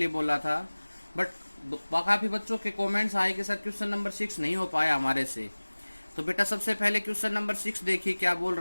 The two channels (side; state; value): both; inverted; correlation -1.00